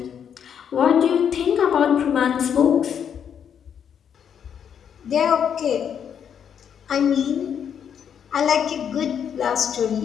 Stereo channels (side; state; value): right; quieter; 8.2 dB